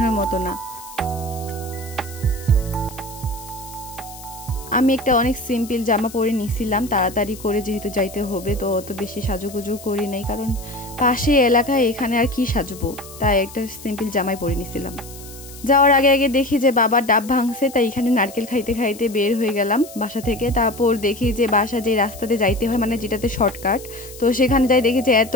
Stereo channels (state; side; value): noise; left; hiss, 17 dB below the sound